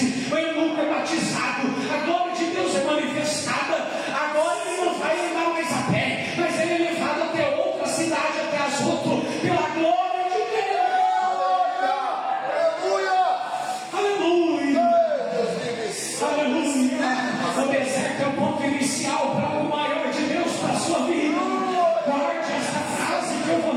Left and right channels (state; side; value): identical; both; correlation 1.00